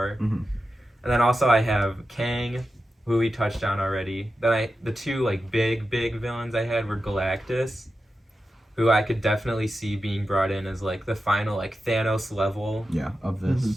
Mhm. And then also I have Kang, who we touched on already. Then the 2 like big villains I had were Galactus, who I could definitely see being brought in as like the final like Thanos level. Yeah, of this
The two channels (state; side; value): normal; both; correlation 0.91